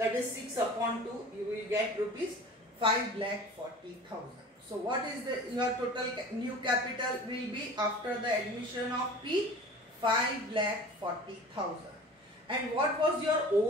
is 6 upon 2, you will get rupees 5,40,000. So what is your total new capital will be after the admission of P? 5,40,000. And what was your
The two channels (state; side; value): normal; both; correlation 0.40